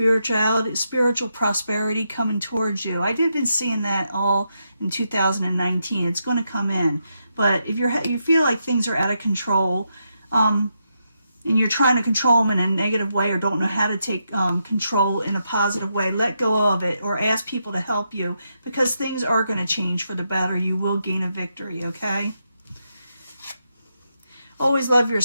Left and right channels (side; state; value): both; inverted; correlation -0.83